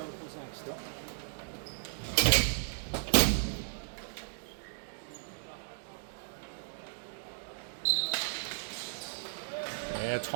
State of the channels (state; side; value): silent; left; digital silence